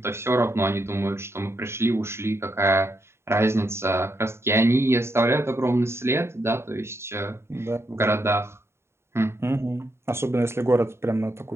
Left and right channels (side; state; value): left; late; 0.12 ms